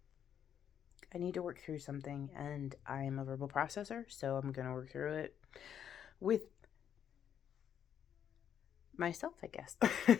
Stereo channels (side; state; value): right; quieter; 9.0 dB